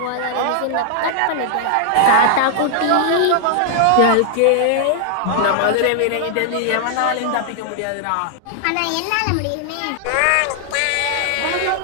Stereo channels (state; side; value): different; both; correlation -0.01